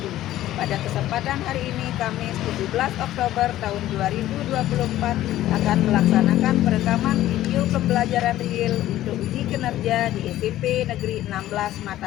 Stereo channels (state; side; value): quieter; right; 14.0 dB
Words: Pada kesempatan hari ini, Kamis 17 Oktober tahun 2024, akan melaksanakan perekaman video pembelajaran real untuk uji kinerja di SMP Negeri 16